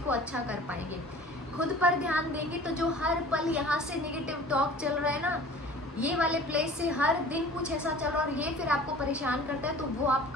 को अच्छा कर पाएंगे। खुद पर ध्यान देंगे तो जो हर पल यहाँ से नेगेटिव टॉक चल रहा है ना, ये वाले प्लेस से हर दिन कुछ ऐसा चल रहा है और ये फिर आपको परेशान करता है, तो वो आप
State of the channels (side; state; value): both; normal; correlation 0.44